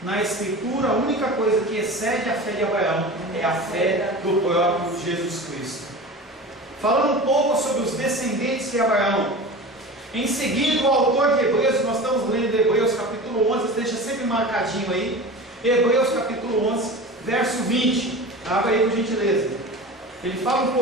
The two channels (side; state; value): both; normal; correlation 0.33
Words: Na Escritura, a única coisa que excede a fé de Abraão é a fé do próprio Jesus Cristo. Falando um pouco sobre os descendentes de Abraão. Em seguida, o autor de Hebreus, nós estamos lendo Hebreus capítulo 11, deixa sempre marcadinho aí, Hebreus capítulo 11, verso 20, abre aí por gentileza. Ele fala um